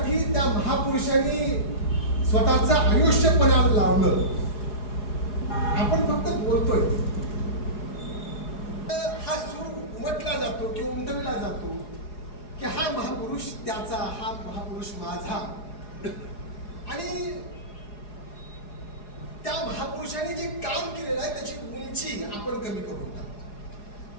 त्या महापुरुषांनी स्वतःचं आयुष्य पणाला लावलं. आपण फक्त बोलतोय, हा सूर उमटला जातो किंवा उमटविला जातो की हा महापुरुष त्याचा, हा महापुरुष माझा. आणि त्या महापुरुषांनी जे काम केलेलं आहे त्याची उंची आपण कमी करून टाकतो.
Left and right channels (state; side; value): late; right; 4.8 ms